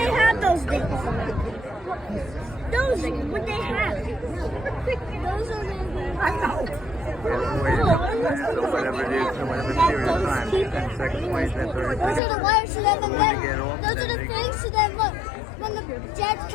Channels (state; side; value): drops out; right; at 12.2 s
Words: have those things? Those things, what they have? Those are the. So whatever it is, in whatever period of time, 10 seconds, 20 seconds, 30 Those are seconds. the wires, so then When they get off, those are then the they things, so then look, when the jets